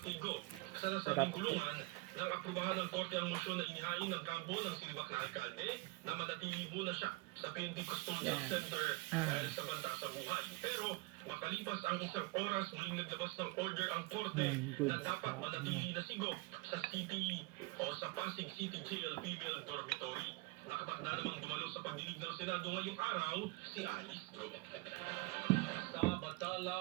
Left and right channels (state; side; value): quieter; left; 24.0 dB